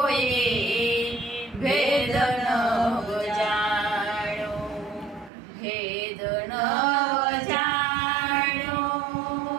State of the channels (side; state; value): left; drops out; at 5.3 s